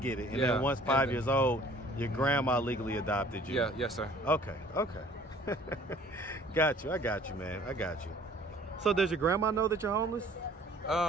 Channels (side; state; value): both; normal; correlation 0.53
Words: it. And then once 5 years old, your grandma legally adopted you. Yeah, yes, sir. Okay. Got you. I got you, man. I got you. So does your grandma know that you're homeless?